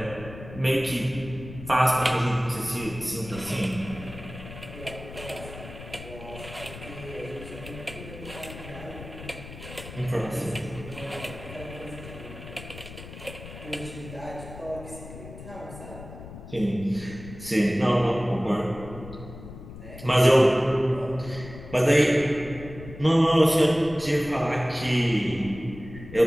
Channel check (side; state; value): left; noise; rumble, 13 dB below the sound